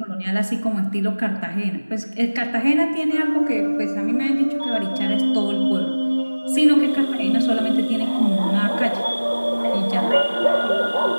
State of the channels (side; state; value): both; inverted; correlation -1.00